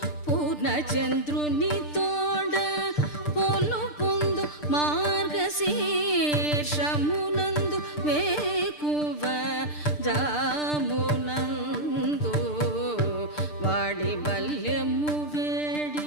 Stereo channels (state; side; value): late; right; 6.7 ms